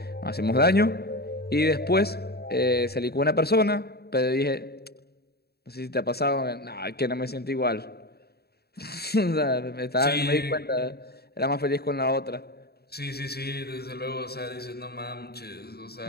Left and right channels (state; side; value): late; right; 0.46 ms